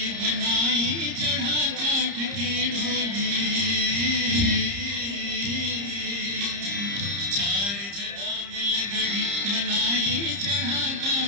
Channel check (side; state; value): left; late; 30 ms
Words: बनाई, चढ़ा काठ की ढोली, चार जना मिल गढ़ी बनाई, चढ़ा